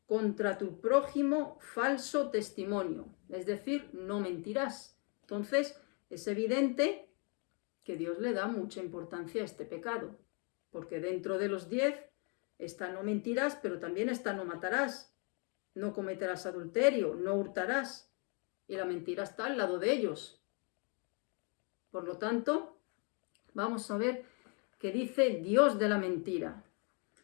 contra tu prójimo falso testimonio, es decir, no mentirás. Entonces, es evidente que Dios le da mucha importancia a este pecado, porque dentro de los 10 está no mentirás, pero también está no matarás, no cometerás adulterio, no hurtarás, y la mentira está al lado de ellos. Por lo tanto, vamos a ver qué dice Dios de la mentira.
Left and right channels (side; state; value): right; quieter; 36.6 dB